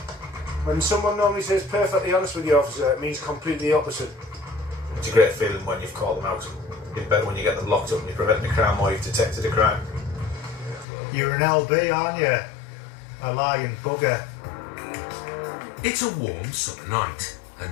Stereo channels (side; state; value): right; drops out; at 10.9 s